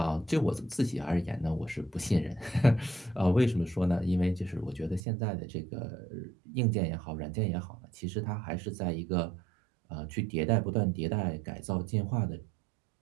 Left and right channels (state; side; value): drops out; left; at 5.0 s